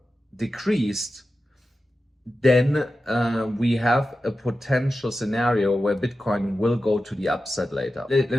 decreased. Then we have a potential scenario where Bitcoin will go to the upside later. Let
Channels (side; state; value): both; normal; correlation 0.92